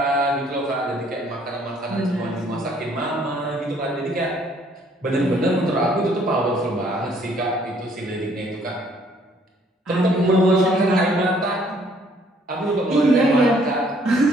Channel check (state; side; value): normal; both; correlation 0.63